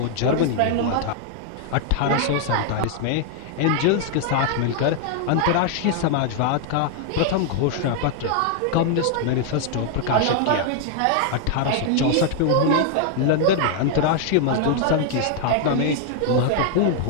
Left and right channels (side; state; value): both; different; correlation 0.00